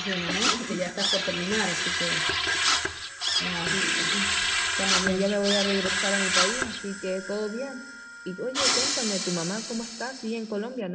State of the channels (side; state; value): both; identical; correlation 1.00